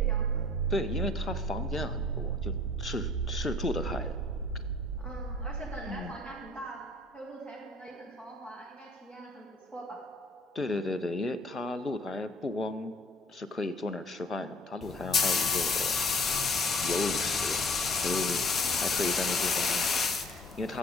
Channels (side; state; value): both; normal; correlation 0.54